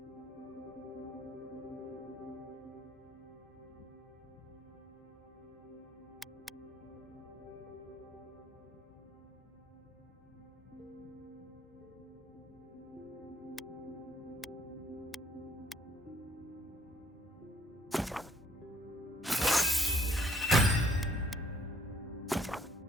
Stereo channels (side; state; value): both; normal; correlation 0.61